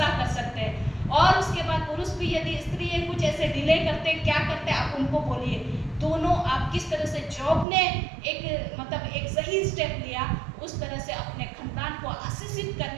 कर सकते हैं। और उसके बाद पुरुष भी यदि स्त्री कुछ ऐसे डिले करते, क्या करते, आप उनको बोलिए। दोनों आप किस तरह से जॉब ने एक सही स्टेप लिया, उस तरह से अपने खानदान को आशीषित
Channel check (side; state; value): left; drops out; at 7.7 s